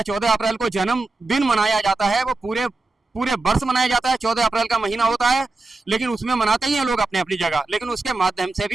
14 अप्रैल को जन्मदिन मनाया जाता है। वो पूरे वर्ष मनाया जाता है, 14 अप्रैल का महीना होता है, लेकिन उसमें मनाते ही हैं लोग अपनी अपनी जगह, लेकिन उसके माध्यम से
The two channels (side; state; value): left; quieter; 3.3 dB